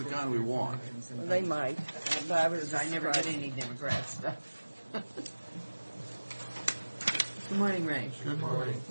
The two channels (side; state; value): both; inverted; correlation -1.00